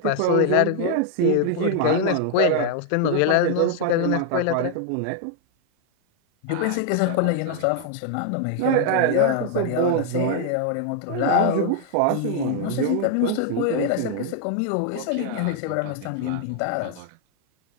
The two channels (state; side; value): different; both; correlation 0.00